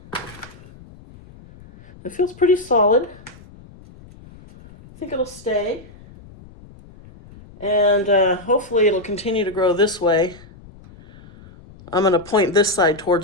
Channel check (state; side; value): noise; left; rumble, 22 dB below the sound